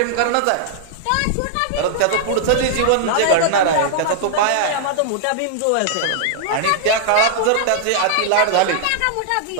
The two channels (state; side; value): different; both; correlation -0.01